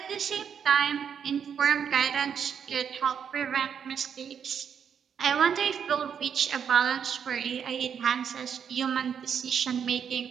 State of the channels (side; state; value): left; quieter; 7.7 dB